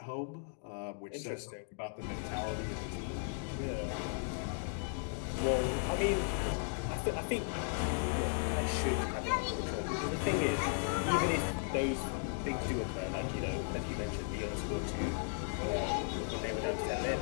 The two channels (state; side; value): silent; right; 54 dB below the other